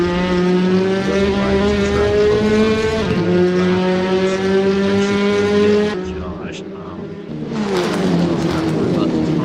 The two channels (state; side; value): identical; both; correlation 1.00